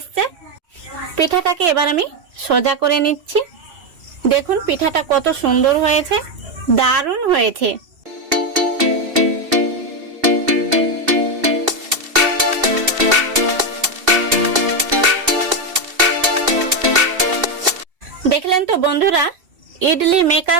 পিঠাটাকে এবার আমি সোজা করে নিচ্ছি। দেখুন পিঠাটা কত সুন্দর হয়েছে, দারুণ হয়েছে। দেখলেন তো বন্ধুরা, ইডলি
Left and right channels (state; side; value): late; left; 2.7 ms